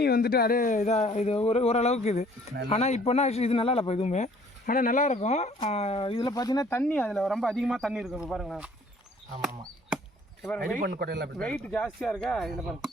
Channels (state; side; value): normal; both; correlation 0.57